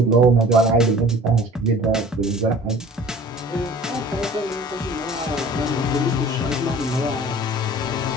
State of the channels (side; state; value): both; normal; correlation 0.46